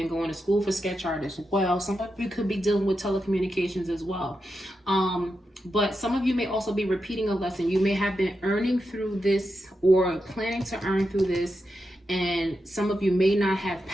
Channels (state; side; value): normal; both; correlation 0.87